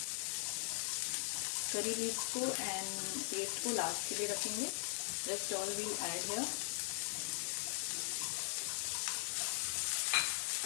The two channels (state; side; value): silent; right; digital silence